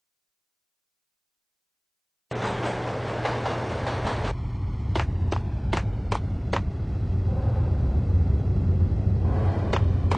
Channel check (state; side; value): identical; both; correlation 1.00